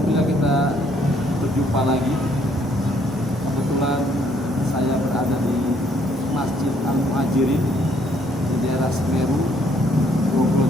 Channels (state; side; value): normal; both; correlation 0.67